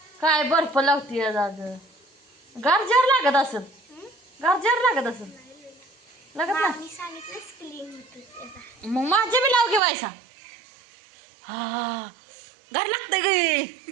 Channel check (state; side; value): drops out; left; at 9.8 s